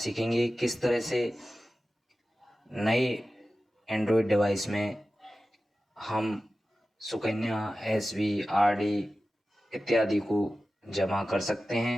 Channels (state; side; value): normal; both; correlation 0.95